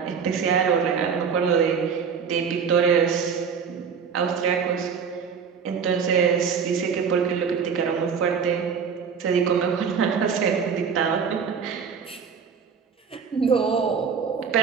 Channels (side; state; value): left; quieter; 6.4 dB